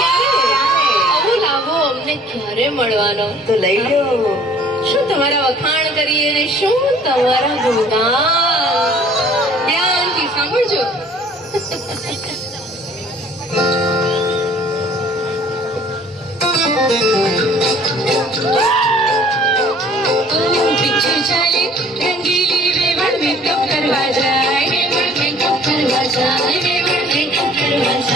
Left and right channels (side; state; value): both; normal; correlation 0.54